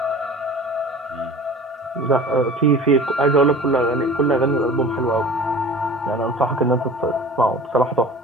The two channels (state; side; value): normal; both; correlation 0.41